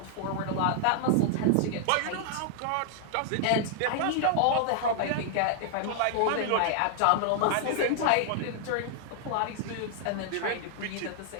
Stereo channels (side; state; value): both; different; correlation 0.00